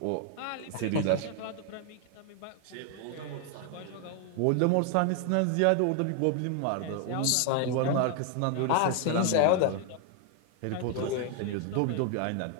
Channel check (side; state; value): both; different; correlation 0.00